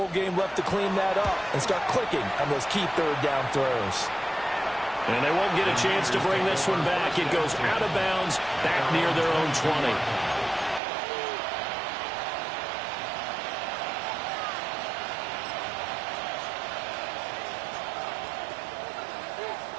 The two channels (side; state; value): left; drops out; at 10.8 s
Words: game left to clean that up and start clicking on those key 3rd down throws. And they won't get a chance to bring this one back. It goes out of bounds, back near their own 20.